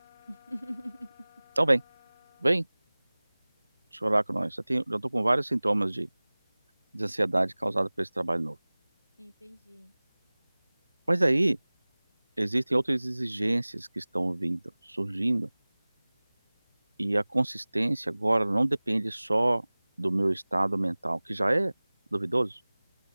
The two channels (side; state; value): both; inverted; correlation -1.00